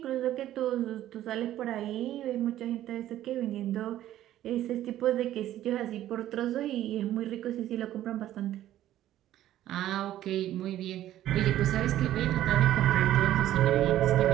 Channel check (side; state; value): left; quieter; 13.0 dB